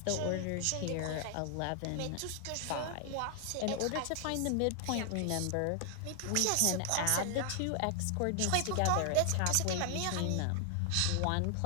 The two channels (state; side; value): different; both; correlation 0.00